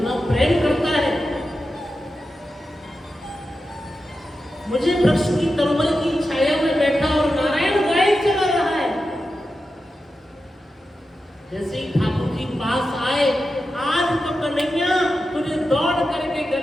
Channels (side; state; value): both; normal; correlation 0.91